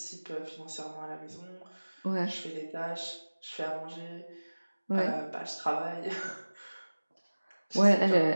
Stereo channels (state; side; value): inverted; both; correlation -1.00